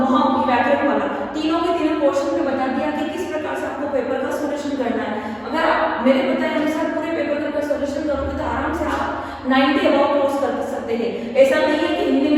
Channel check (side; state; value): both; identical; correlation 1.00